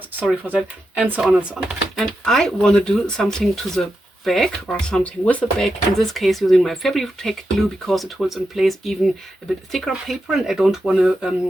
sorry for that, and so on and so on. And I want to do something to the back, or something with the back, in this case using my fabric tack glue, because it holds in place even a bit thicker paper, and I don't want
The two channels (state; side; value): normal; both; correlation 0.87